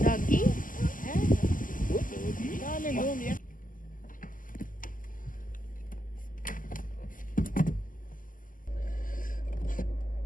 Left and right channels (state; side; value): late; right; 0.39 ms